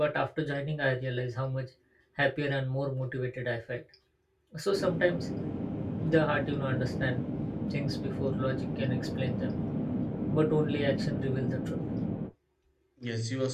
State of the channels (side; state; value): both; identical; correlation 1.00